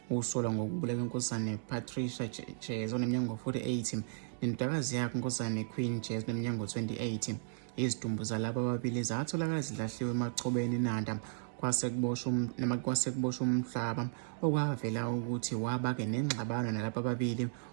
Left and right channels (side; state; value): left; silent; digital silence